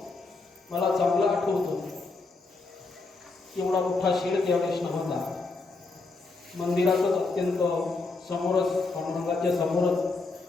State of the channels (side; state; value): right; quieter; 3.7 dB